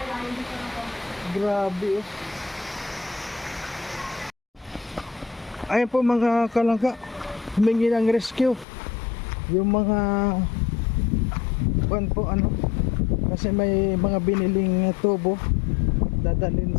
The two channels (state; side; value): drops out; right; at 8.7 s